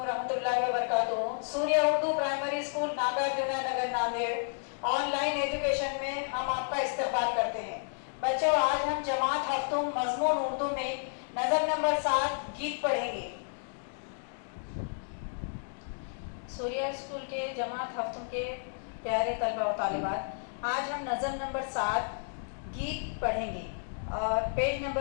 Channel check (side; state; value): right; silent; digital silence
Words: रहमतुल्लाहि व बरकातुहू। सूर्य उर्दू प्राइमरी स्कूल नागार्जुना नगर नांदेड़ ऑनलाइन एजुकेशन में हम आपका इस्तकबाल करते हैं। बच्चों, आज हम जमात हफ्तुम मजमून उर्दू में नज़म नंबर 7 गीत पढ़ेंगे। सूर्य स्कूल के जमात हफ्तुम के प्यारे तलबा व तालिबात, आज हम नज़म नंबर 7 गीत पढ़ेंगे और पेज